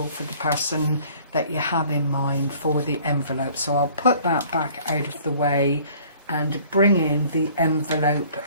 for the person that you have in mind for the envelope. So I'll put that back out of the way and bring in the envelope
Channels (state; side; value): inverted; both; correlation -0.53